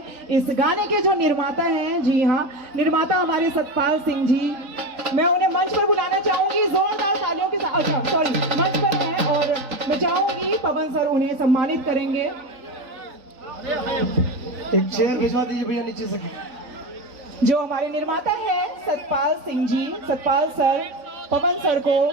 इस गाने के जो निर्माता हैं, जी हाँ, निर्माता हमारे सतपाल सिंह जी, मैं उन्हें मंच पर बुलाना चाहूंगी जोरदार तालियों के साथ। अच्छा सॉरी, मंच पर हैं और मैं चाहूंगी पवन सर उन्हें सम्मानित करेंगे। एक चेयर भिजवा दीजिए भैया नीचे से। जो हमारे निर्माता हैं सतपाल सिंह जी, सतपाल सर पवन सर को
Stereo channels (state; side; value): late; left; 3.9 ms